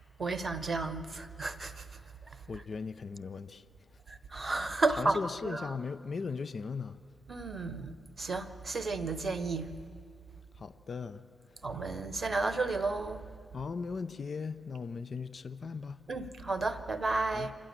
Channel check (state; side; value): normal; both; correlation 0.85